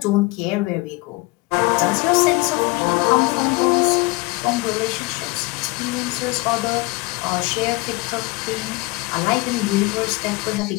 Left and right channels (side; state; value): right; quieter; 24.0 dB